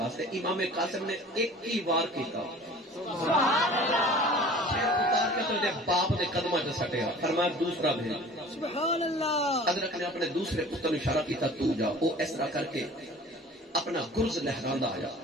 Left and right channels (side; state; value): both; normal; correlation 0.44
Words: امام قاسم نے ایک ہی وار کیتا سبحان اللہ پھر اتار کے تو دے باپ دے قدمہ جو سٹیا فرمایا دوسرا بھیج سبحان اللہ ادرک نے اپنے دوسرے پتر نے اشارہ کیتا تو جا وہ اس طرح کر کے اپنا گرز لہراندہ آیا